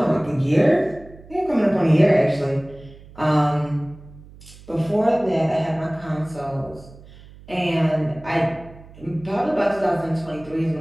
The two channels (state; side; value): noise; right; hum, 21 dB below the sound